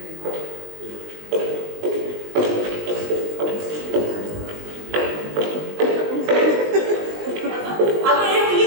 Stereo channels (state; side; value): late; left; 19 ms